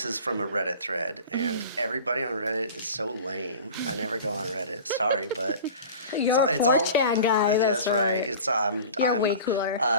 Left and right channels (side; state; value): both; inverted; correlation -0.38